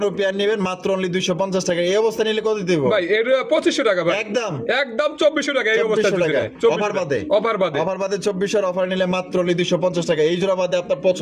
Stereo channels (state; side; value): identical; both; correlation 1.00